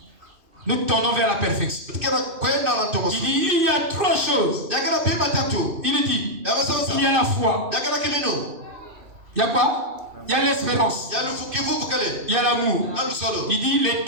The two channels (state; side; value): late; left; 2.6 ms